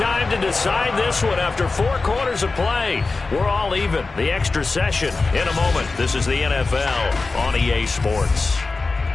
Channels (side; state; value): right; quieter; 3.8 dB